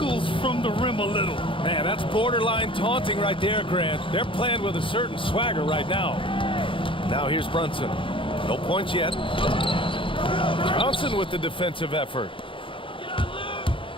from the rim a little. Man, that's borderline taunting right there, Grant. They're playing with a certain swagger right now. Now here's Brunson. No points yet. Johnson with the defensive effort.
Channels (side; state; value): right; late; 0.25 ms